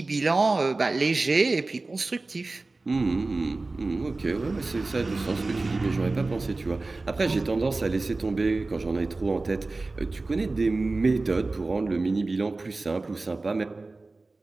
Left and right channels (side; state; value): left; quieter; 3.4 dB